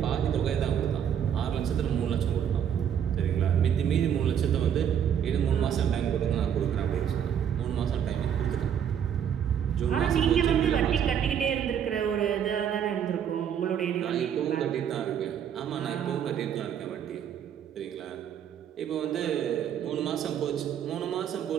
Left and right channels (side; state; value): left; quieter; 8.8 dB